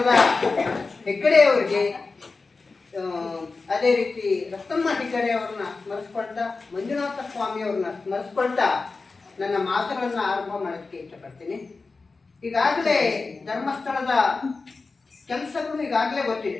ಹೆಗ್ಗಡೆಯವರಿಗೆ, ಅದೇ ರೀತಿ ರತ್ನಮ್ಮ ಹೆಗ್ಗಡೆಯವ್ರನ್ನ ಸ್ಮರಿಸ್ಕೊಳ್ತಾ, ಮಂಜುನಾಥ ಸ್ವಾಮಿಯವ್ರನ್ನ ಸ್ಮರಿಸ್ಕೊಳ್ತಾ ನನ್ನ ಮಾತುಗಳನ್ನು ಆರಂಭ ಮಾಡೋದಕ್ಕೆ ಇಷ್ಟಪಡ್ತೀನಿ. ಈಗಾಗಲೇ ಧರ್ಮಸ್ಥಳದ ಕೆಲಸಗಳು ಈಗಾಗಲೇ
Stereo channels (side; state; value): right; quieter; 4.0 dB